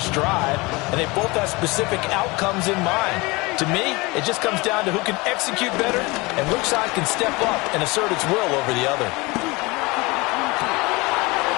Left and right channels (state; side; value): quieter; right; 24.4 dB